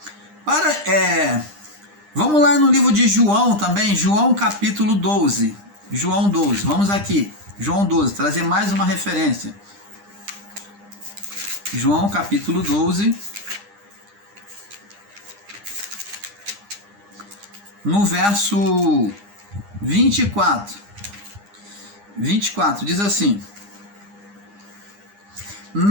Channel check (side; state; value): left; late; 9.9 ms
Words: vamos lá no livro de João também, João capítulo 12. João 12, vamos aqui. João 12, trazer mais uma referência. João capítulo 12. No verso 24 diz assim: